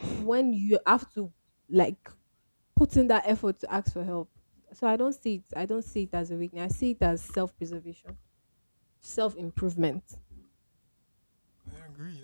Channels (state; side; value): inverted; both; correlation -1.00